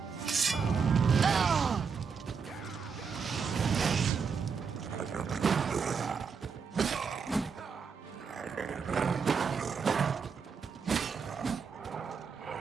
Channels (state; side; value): quieter; left; 5.9 dB